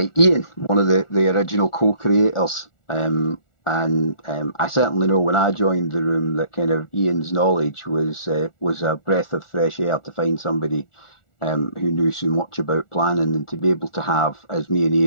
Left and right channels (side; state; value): right; late; 1.4 ms